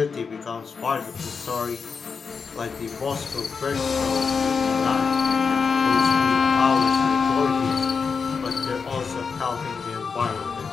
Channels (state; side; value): quieter; right; 5.5 dB